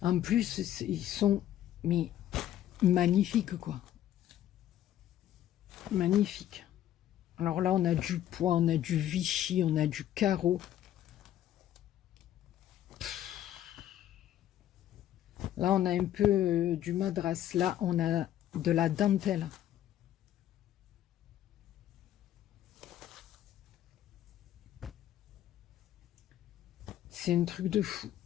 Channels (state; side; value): quieter; right; 11.9 dB